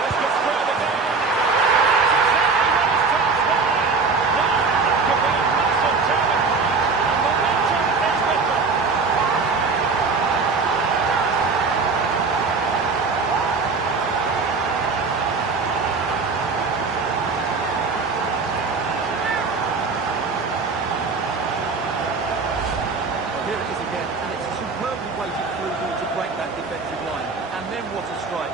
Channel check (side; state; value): left; quieter; 4.4 dB